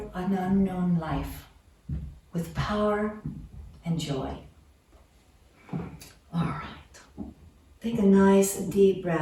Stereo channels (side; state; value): both; identical; correlation 1.00